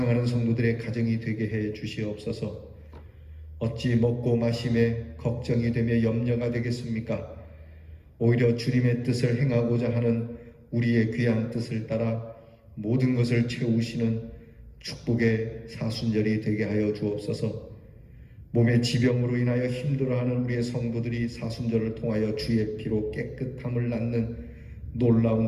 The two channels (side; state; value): both; identical; correlation 1.00